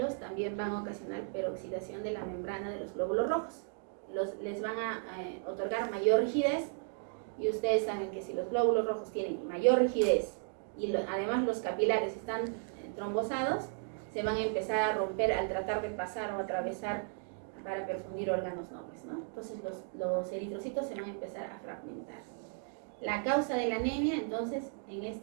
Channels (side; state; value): left; silent; 54 dB below the other